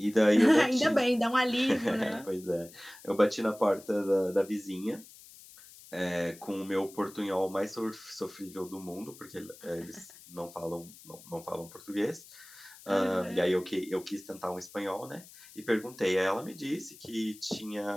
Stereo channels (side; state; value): left; noise; hiss, 20 dB below the sound